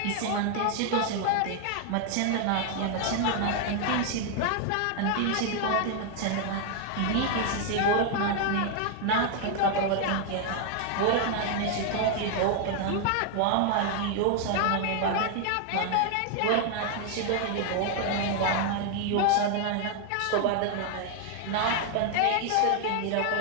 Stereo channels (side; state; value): both; different; correlation 0.00